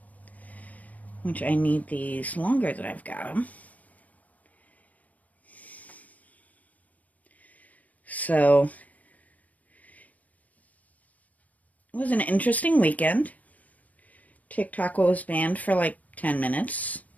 Which I need these longer than I've got them. So, it was an interesting weekend. TikTok was banned for like 10 minutes.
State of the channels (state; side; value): late; right; 0.072 ms